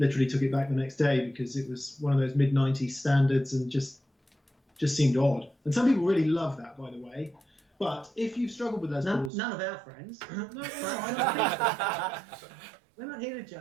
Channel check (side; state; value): left; drops out; at 9.3 s